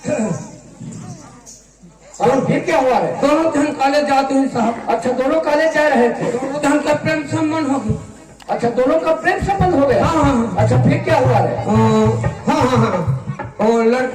और फिर क्या हुआ है? दोनों धन कॉलेज जाते हैं साहब। अच्छा दोनों कॉलेज जा रहे थे। दोनों धन का प्रेम संबंध हो गया। अच्छा दोनों का प्रेम संबंध हो गया। हाँ हाँ। अच्छा फिर क्या हुआ है? हाँ हाँ हाँ, और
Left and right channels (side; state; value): both; identical; correlation 1.00